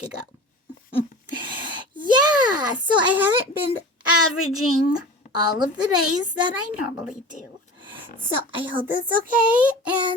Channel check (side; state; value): both; normal; correlation 0.36